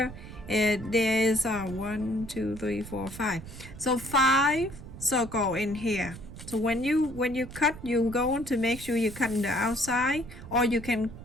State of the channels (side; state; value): right; noise; rumble, 14 dB below the sound